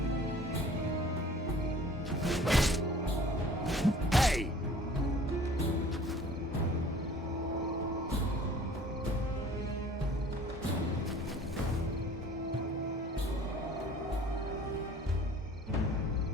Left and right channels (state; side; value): normal; both; correlation 0.49